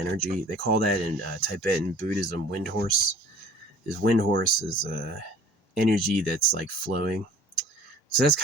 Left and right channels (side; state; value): both; normal; correlation 0.49